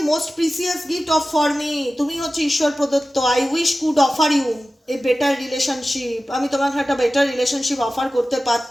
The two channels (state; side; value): normal; both; correlation 0.95